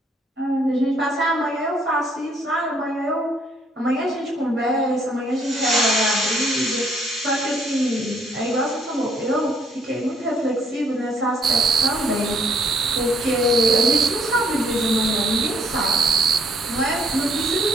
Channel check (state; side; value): normal; both; correlation 0.66